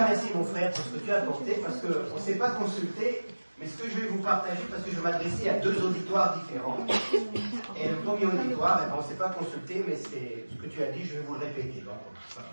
merci mon frère pour ce que tu as apporté, parce qu'on ne s'est pas consulté, mais ce que je vais vous partager, parce que je m'adressais à deux auditoires différents. Et le premier auditoire, on ne s'est pas consulté, mais c'est ce que tu as dit, je vais vous le répéter. Donc, pas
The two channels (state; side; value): inverted; both; correlation -1.00